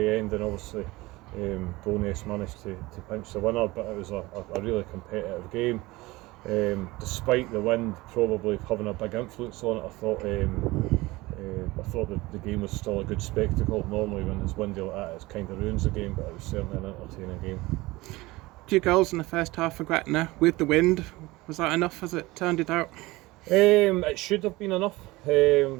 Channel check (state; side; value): quieter; left; 20.6 dB